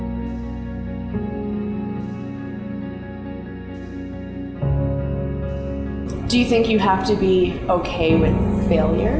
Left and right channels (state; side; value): identical; both; correlation 1.00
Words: Do you think you have to be okay with